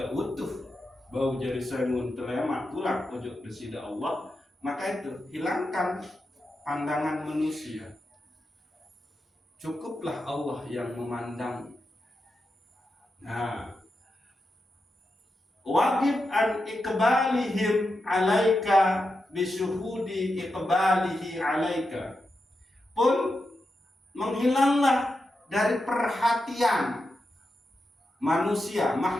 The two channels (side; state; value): both; normal; correlation 0.88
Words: utuh, bau jari semun telemat tulak ujug desida Allah, maka itu hilangkan pandangan manusia. Cukuplah Allah yang memandang. Nah, wajib an iqbalihim alaika bisyuhudi iqbalihi alaika, pun menghilanglah dari perhatian manusia,